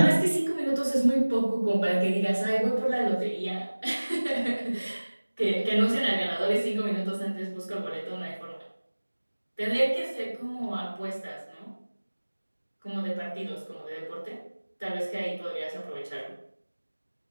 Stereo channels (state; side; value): inverted; both; correlation -1.00